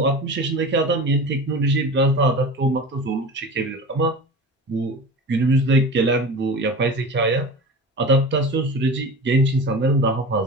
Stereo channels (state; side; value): normal; both; correlation 0.32